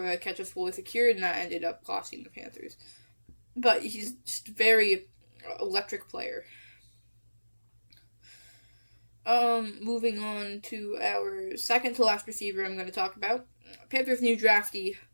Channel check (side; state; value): both; inverted; correlation -1.00